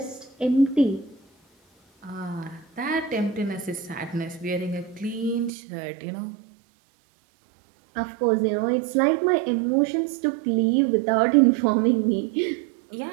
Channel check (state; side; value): drops out; left; at 5.5 s